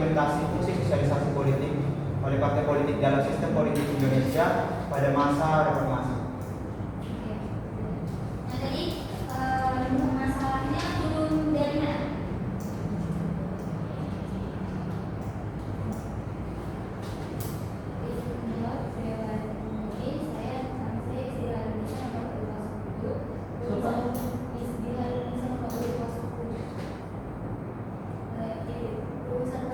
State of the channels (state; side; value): identical; both; correlation 1.00